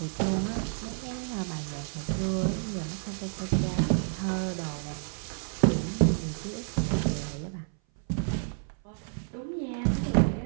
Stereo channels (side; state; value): left; silent; 57 dB below the other